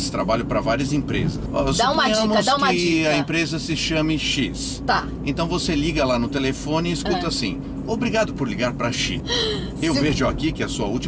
trabalho para várias empresas. Dá uma dica. A empresa se chame X. Tá. Então você liga lá no telefone e escuta assim, obrigado por ligar para X. Eu vejo aqui que a sua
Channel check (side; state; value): both; identical; correlation 1.00